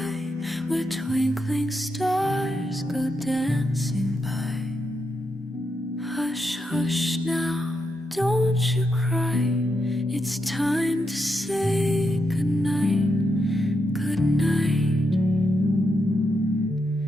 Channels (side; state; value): both; normal; correlation 0.83